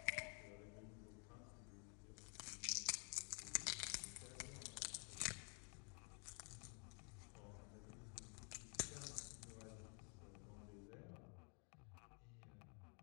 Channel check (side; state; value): right; quieter; 38.5 dB